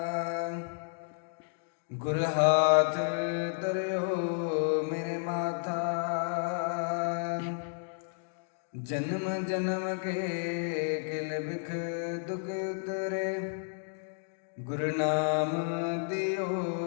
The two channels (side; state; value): right; silent; digital silence